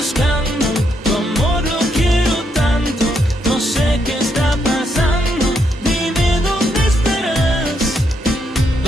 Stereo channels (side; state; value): both; normal; correlation 0.78